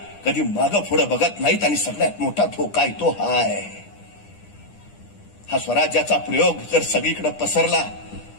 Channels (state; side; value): late; right; 9.9 ms